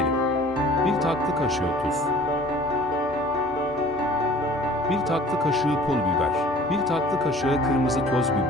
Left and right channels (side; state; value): both; normal; correlation 0.48